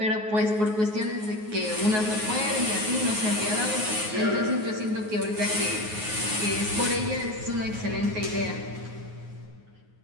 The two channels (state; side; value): late; left; 9.4 ms